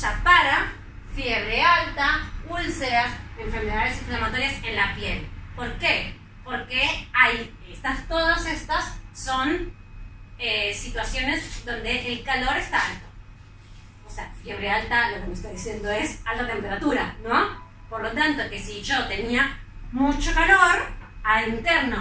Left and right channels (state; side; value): identical; both; correlation 1.00